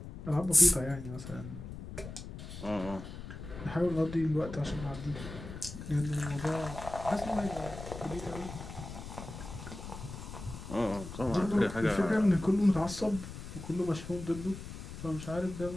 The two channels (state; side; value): noise; left; rumble, 11 dB below the sound